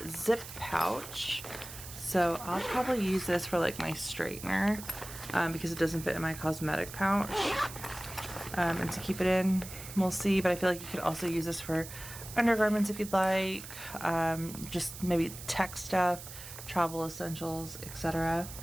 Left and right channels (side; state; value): right; noise; hiss, 12 dB below the sound